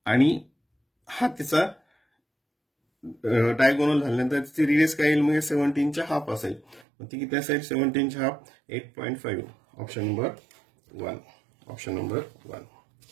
आणि हा त्याचा डायगोनल झाल्यानंतर त्याची रेडियस काय येईल मग 17च्या हाफ असेल मग ती किती असेल 17च्या half 8.5 option number 1 option number 1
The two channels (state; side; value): drops out; left; at 6.9 s